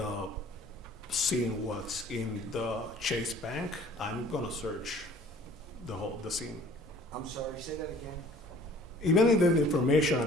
scene was in the Chase Bank, I'm gonna search the scene. I'm sorry, say that again? Even in the information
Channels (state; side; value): normal; both; correlation 0.52